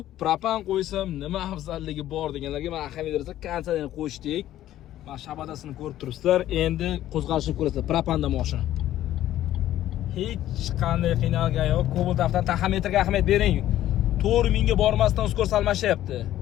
propan qo'ysam nima afzalligi bor deganlarga men ahamiyat bersa kondisionerni qo'shdik. Mana shabadasini ko'rib turibsizlar. Endi qo'zg'alishni ko'rasizlar. Propanda mashina. Hech qanday qiynalgan yo'q. Cobalt avtodan taxometrga ahamiyat bering. 4000 ga bormasdan skorost almashyapti.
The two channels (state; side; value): quieter; right; 13.1 dB